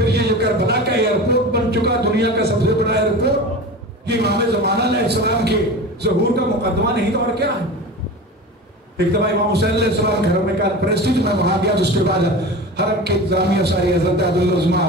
یہ جو کربلا کا ایئرپورٹ بن چکا دنیا کا سب سے بڑا ایئرپورٹ، یہ امام زمانہ علیہ السلام کے ظہور کا مقدمہ نہیں تو اور کیا ہے. ایک دفعہ امام حسین علیہ السلام گھر میں کانفرنس تھی، میں وہاں گیا. اس کے بعد حرم کے انتظامیہ ساری حضرت عبدالعظمہ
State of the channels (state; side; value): normal; both; correlation 0.31